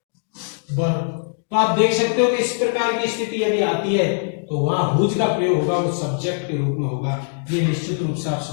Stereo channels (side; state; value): right; silent; 65 dB below the other